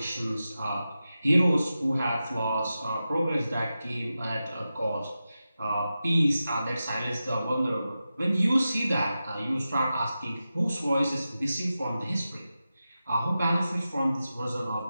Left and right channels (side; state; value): both; inverted; correlation -0.92